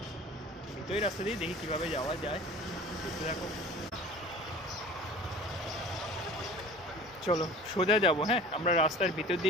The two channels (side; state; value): both; normal; correlation 0.42